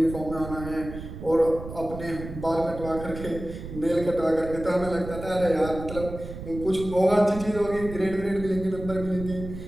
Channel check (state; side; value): noise; right; rumble, 10 dB below the sound